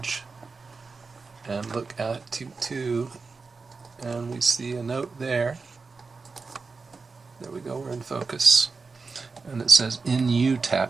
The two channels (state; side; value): quieter; left; 4.4 dB